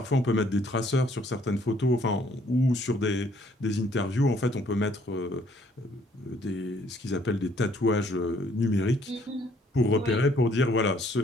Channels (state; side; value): normal; both; correlation 0.64